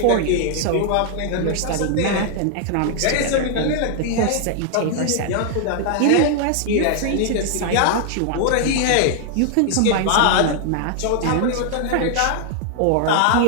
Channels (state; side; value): different; both; correlation 0.00